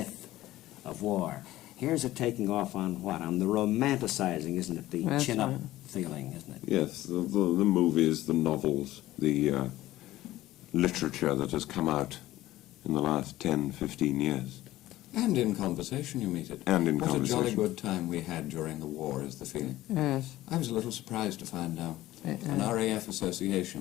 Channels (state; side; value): quieter; right; 15.7 dB